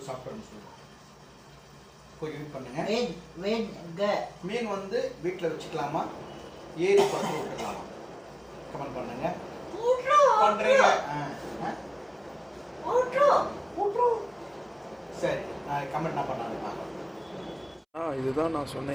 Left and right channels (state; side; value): identical; both; correlation 1.00